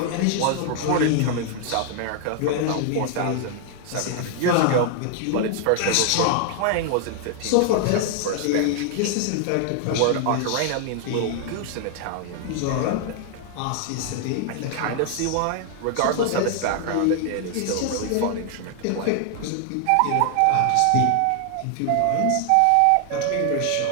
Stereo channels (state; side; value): different; both; correlation 0.00